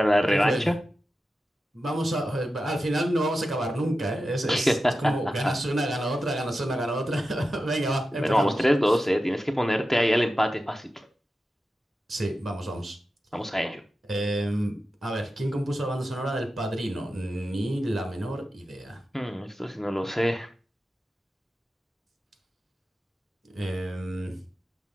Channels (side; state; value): both; normal; correlation 0.92